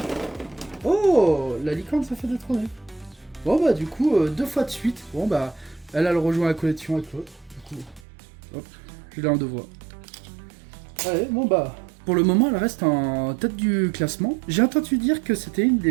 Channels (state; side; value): drops out; left; at 8.1 s